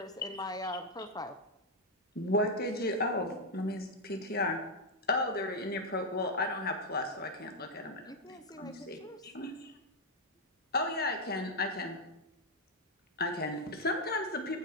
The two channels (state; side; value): normal; both; correlation 0.00